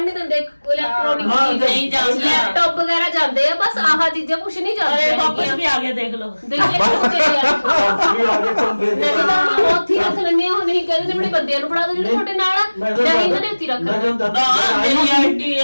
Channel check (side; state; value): both; inverted; correlation -1.00